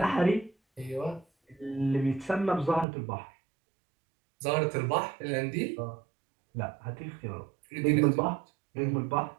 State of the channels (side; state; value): left; drops out; at 2.9 s